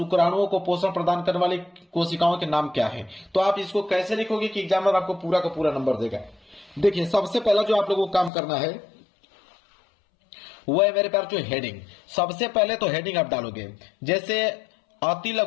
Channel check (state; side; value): drops out; right; at 8.3 s